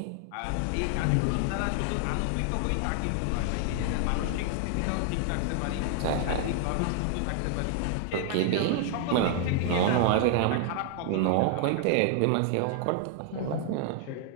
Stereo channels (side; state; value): both; different; correlation 0.00